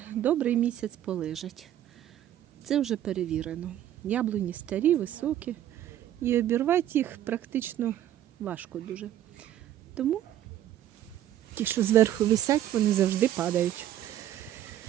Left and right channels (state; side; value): quieter; left; 12.0 dB